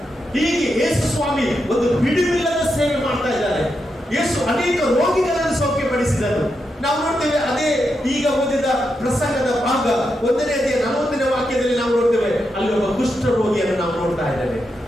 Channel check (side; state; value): both; normal; correlation 0.85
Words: ಹೀಗೆ ಯೇಸು ಸ್ವಾಮಿ ಒಂದು ಬಿಡುವಿಲ್ಲದ ಸೇವೆ ಮಾಡ್ತಾ ಇದ್ದಾರೆ. ಯೇಸು ಅನೇಕ ರೋಗಿಗಳನ್ನು ಸೌಖ್ಯಪಡಿಸಿದರು. ನಾವು ನೋಡ್ತೇವೆ, ಅದೇ ಈಗ ಓದಿದ ಪ್ರಸಂಗದ ಭಾಗ 1ನೇ ಅಧ್ಯಾಯ 40ನೇ ವಾಕ್ಯದಲ್ಲಿ ನಾವು ನೋಡ್ತೇವೆ, ಅಲ್ಲಿ ಒಬ್ಬ ಕುಷ್ಠ ರೋಗಿಯನ್ನು ನಾವು ನೋಡ್ತಾ ಇದ್ದೇವೆ.